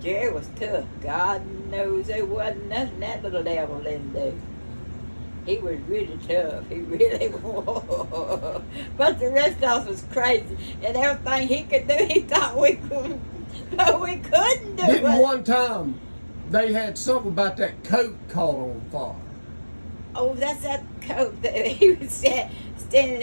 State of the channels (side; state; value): both; inverted; correlation -1.00